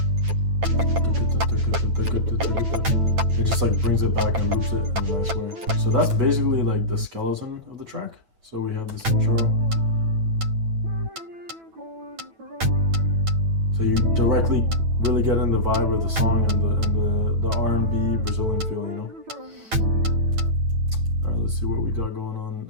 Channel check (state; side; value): late; left; 9.1 ms